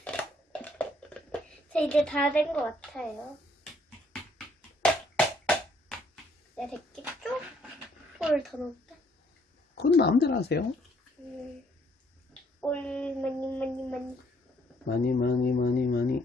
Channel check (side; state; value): both; normal; correlation 0.67